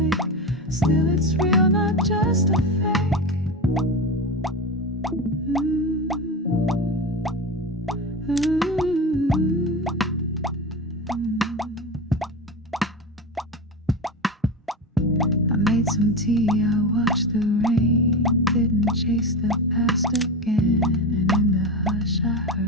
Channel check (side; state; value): both; normal; correlation 0.21